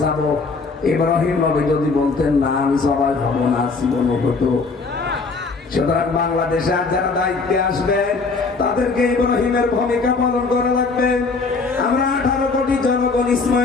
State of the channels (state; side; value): quieter; right; 4.2 dB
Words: যাব, ইব্রাহিম নবী যদি বলতেন না আমি জবাই হব না, জীবন হতো? সুতরাং বাংলাদেশে আর যারা দায়িত্বে আসবে তাদেরকে ইব্রাহিমের ভূমিকা পালন করা লাগবে। আমরা 18 কোটি জনগণ